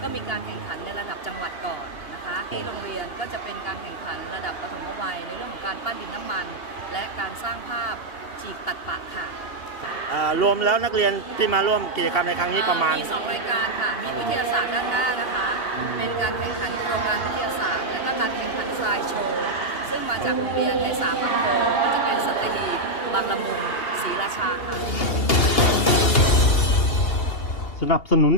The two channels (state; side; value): late; right; 2.8 ms